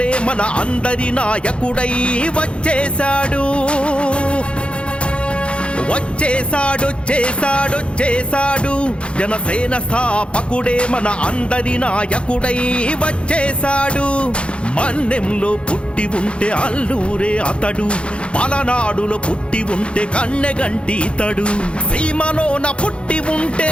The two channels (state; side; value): late; right; 0.058 ms